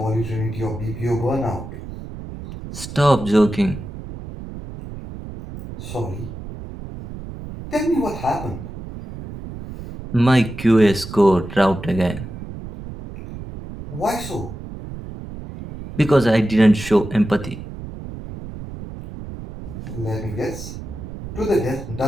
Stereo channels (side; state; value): right; noise; rumble, 11 dB below the sound